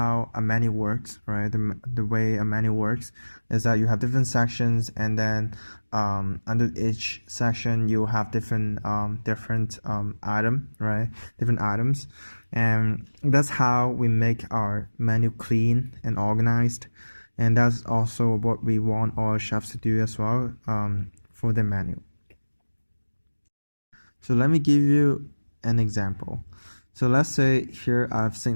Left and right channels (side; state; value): both; inverted; correlation -1.00